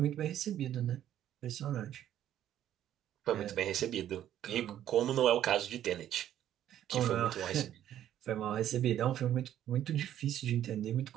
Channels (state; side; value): quieter; left; 11.4 dB